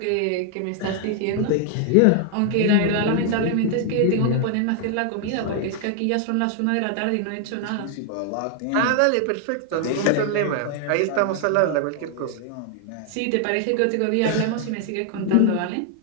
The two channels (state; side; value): different; both; correlation 0.00